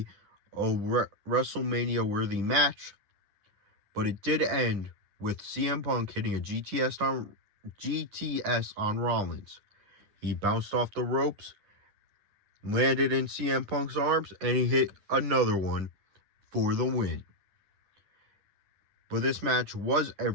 a WrestleMania worthy match. But it did end with CM Punk hitting a GTS on Rollins. He bounced off the ropes, landed in CM Punk's arms, and he hit another one for the win. But this match was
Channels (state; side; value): late; left; 9.8 ms